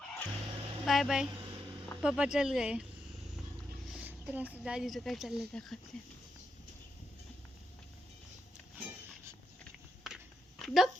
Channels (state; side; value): normal; both; correlation 0.83